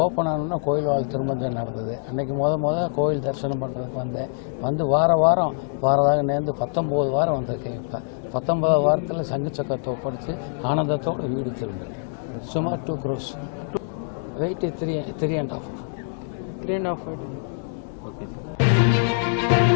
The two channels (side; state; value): right; silent; digital silence